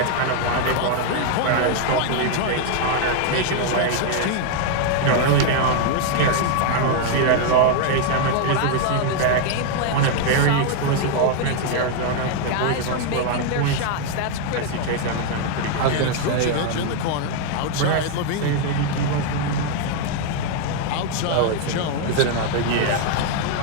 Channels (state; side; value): different; both; correlation 0.00